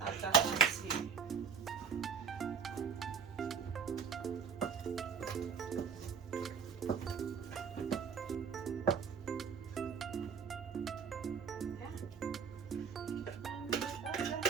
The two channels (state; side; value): quieter; left; 6.3 dB